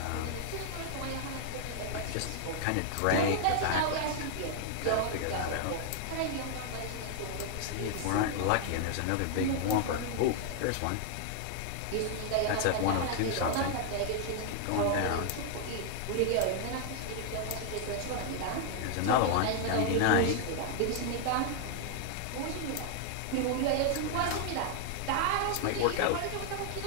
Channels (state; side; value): different; both; correlation 0.00